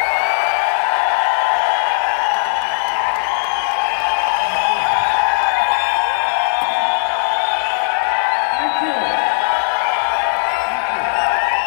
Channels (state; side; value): silent; right; digital silence